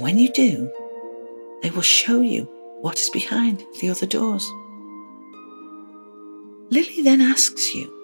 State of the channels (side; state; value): both; inverted; correlation -1.00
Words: you do, they will show you what is behind the other doors. Lily then asks you,